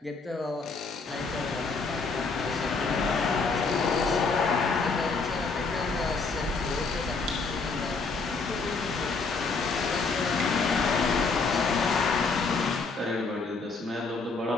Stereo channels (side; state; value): right; quieter; 4.3 dB